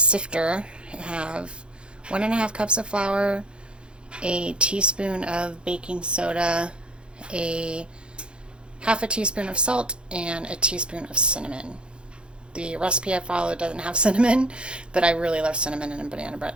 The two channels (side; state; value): left; late; 0.055 ms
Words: I have 1.5 cups of flour, a teaspoon of baking soda, a 1/2 teaspoon of salt, and a teaspoon of cinnamon. The recipe I followed doesn't have cinnamon, but I really love cinnamon in banana bread,